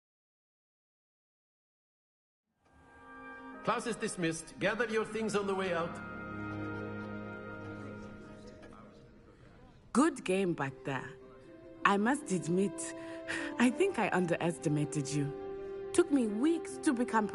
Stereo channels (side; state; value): both; identical; correlation 1.00